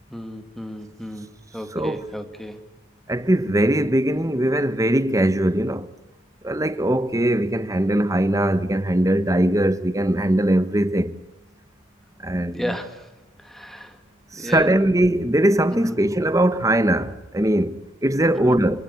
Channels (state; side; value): normal; both; correlation 0.81